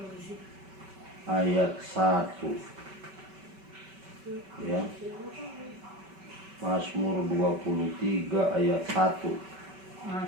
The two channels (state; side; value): late; left; 5.2 ms